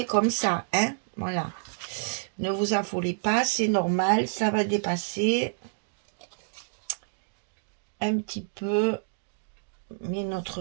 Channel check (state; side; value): silent; left; digital silence